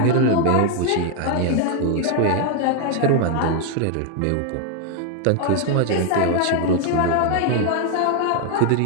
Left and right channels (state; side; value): different; both; correlation 0.00